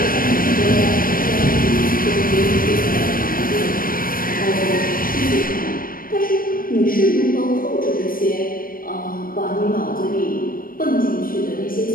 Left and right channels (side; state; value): right; late; 0.41 ms